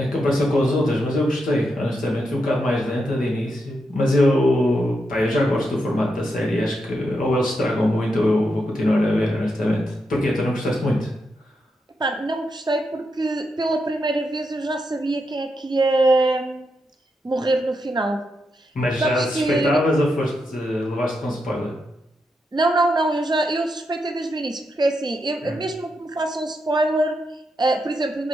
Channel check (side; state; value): both; normal; correlation 0.83